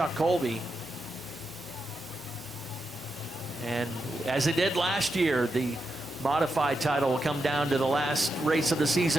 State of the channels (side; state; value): both; normal; correlation 0.86